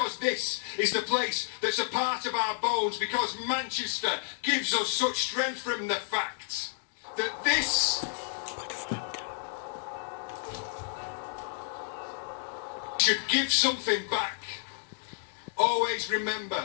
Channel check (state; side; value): silent; right; digital silence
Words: this is the place that's a part of our bones, because Manchester gives us such strength from the fact that this should give something back. Always